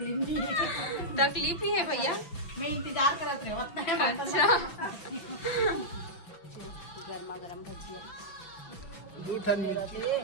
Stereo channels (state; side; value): late; right; 6.0 ms